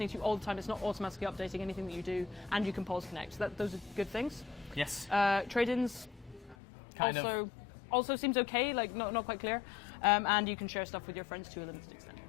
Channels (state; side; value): drops out; right; at 6.6 s